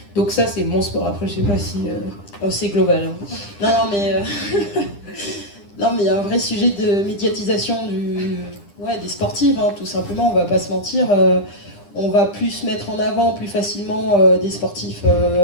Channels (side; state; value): right; late; 9.9 ms